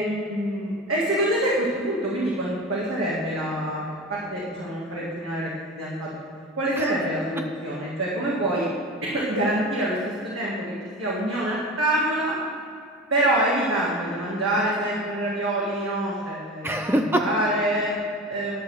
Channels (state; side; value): normal; both; correlation 0.32